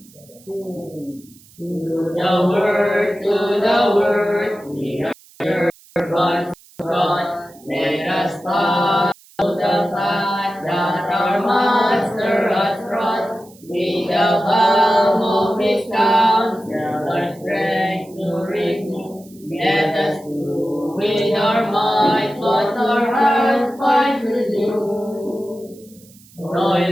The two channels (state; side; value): noise; right; hiss, 26 dB below the sound